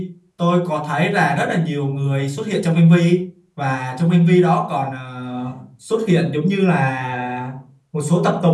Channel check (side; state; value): both; identical; correlation 1.00